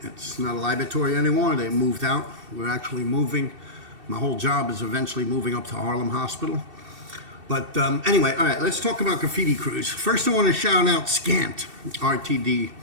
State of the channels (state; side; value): late; left; 2.7 ms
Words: It's not a laboratory anymore. They moved out. We're actually moving. My whole job is eventually moving up to Harlem Hospital. But anyway, all right, let's talk about graffiti crews. First, I want to shout out Scant, RTD.